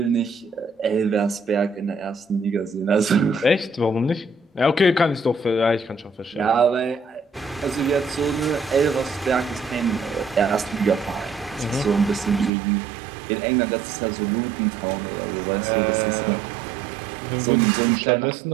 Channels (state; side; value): drops out; left; at 12.5 s